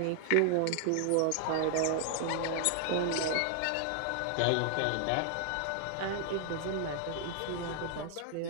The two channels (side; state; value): both; different; correlation 0.00